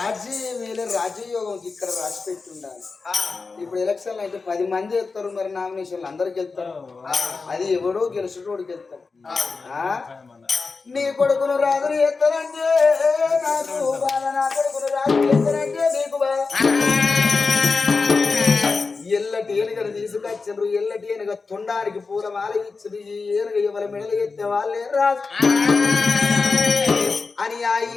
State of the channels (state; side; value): quieter; right; 4.4 dB